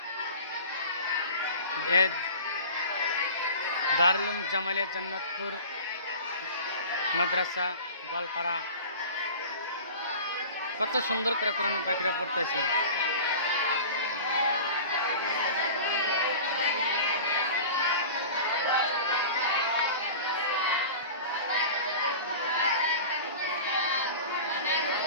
দারুল উলুম জামালিয়া জান্নাতুর মাদ্রাসা গোয়ালপাড়া, কত সুন্দর করে কোরআনের পাখিরা পড়তেছে।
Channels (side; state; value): both; inverted; correlation -0.37